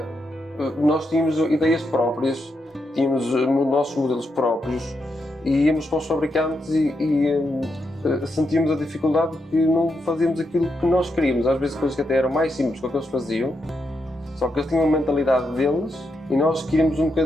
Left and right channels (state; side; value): normal; both; correlation 0.83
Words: nós tínhamos ideias próprias, tínhamos nossos modelos próprios e íamos para os fabricantes e sentíamos a dificuldade de que não fazíamos aquilo que nós queríamos. Às vezes coisas que até eram mais simples que o que eles faziam. Só que eles tinham a mentalidade deles e nós queríamos um